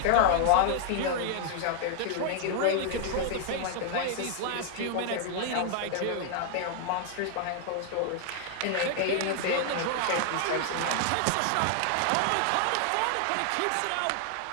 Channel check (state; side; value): different; both; correlation 0.00